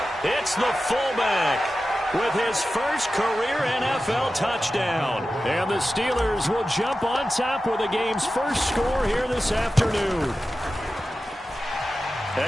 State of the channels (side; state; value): both; normal; correlation 0.93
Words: It's the fullback with his first career NFL touchdown. And the Steelers will jump on top with the game's first score here this afternoon.